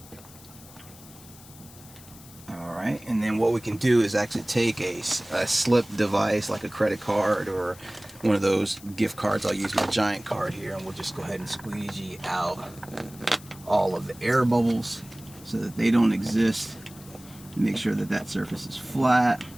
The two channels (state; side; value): noise; left; hiss, 20 dB below the sound